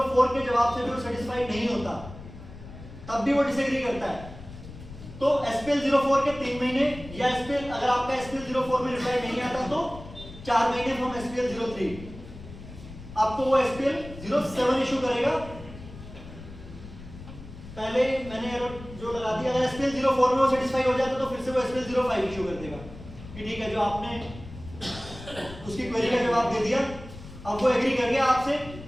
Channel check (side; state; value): left; noise; rumble, 15 dB below the sound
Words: के जवाब से भी वो सेटिस्फाइड नहीं होता, तब भी वो डिसएग्री करता है, तो SPL 04 के 3 महीने, या SPL अगर आपका SPL 04 में रिप्लाई नहीं आता तो 4 महीने फ्रॉम SPL 03 आपको वो SPL 07 इशू करेगा। पहले मैंने जो लगा दिया, अगर SPL 04 में वो सेटिस्फाई हो जाता तो फिर से वो SPL 05 इशू कर देगा कि ठीक है, जो आपने उसकी क्वेरी का जवाब दे दिया, अब वो एग्री कर गया आपसे,